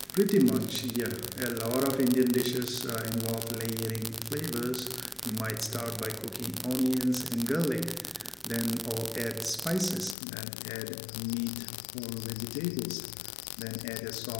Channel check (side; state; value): right; drops out; at 10.2 s